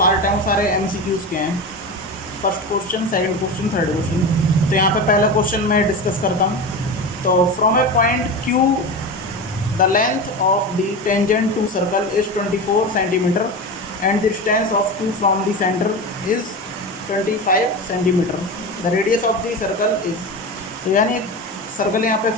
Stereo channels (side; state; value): both; normal; correlation 0.25